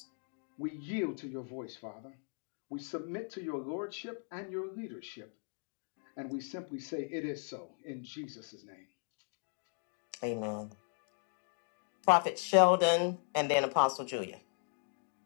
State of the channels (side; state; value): right; silent; 53 dB below the other